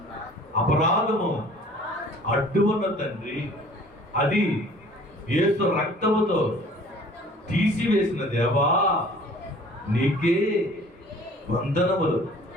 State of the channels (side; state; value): both; normal; correlation 0.50